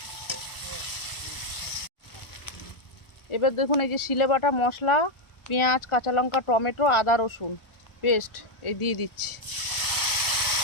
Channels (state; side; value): late; right; 1.4 ms